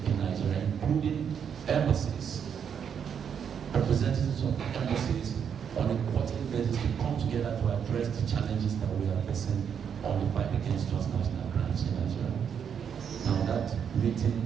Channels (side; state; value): left; quieter; 7.7 dB